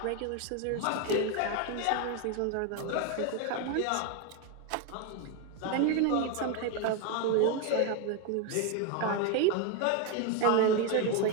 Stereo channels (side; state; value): both; different; correlation 0.01